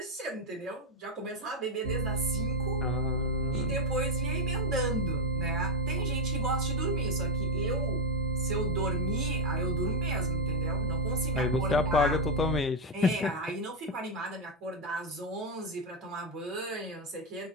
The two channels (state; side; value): normal; both; correlation 0.05